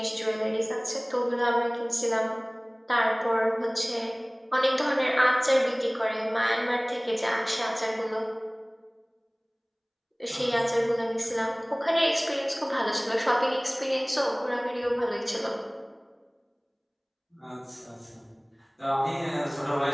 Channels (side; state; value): both; identical; correlation 1.00